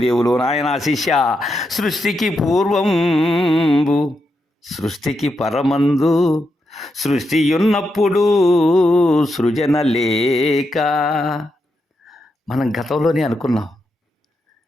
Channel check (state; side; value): normal; both; correlation 0.84